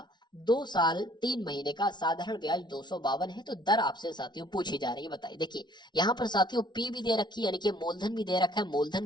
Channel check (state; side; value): late; right; 0.21 ms